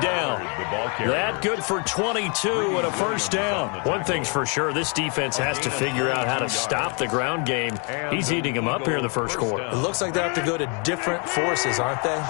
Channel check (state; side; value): quieter; right; 35.8 dB